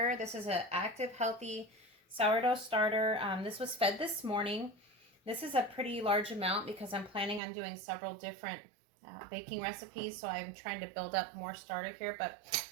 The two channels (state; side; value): drops out; left; at 7.4 s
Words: This is an active, healthy sourdough starter. This was fed this morning. This is a pretty large amount because I'm planning on doing several different baking recipes. So I'm trying to build up more starter here. But